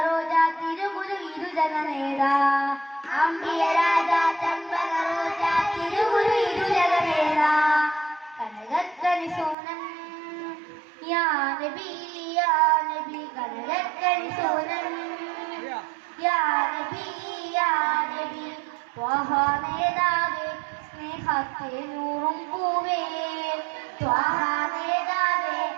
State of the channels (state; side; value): drops out; left; at 9.6 s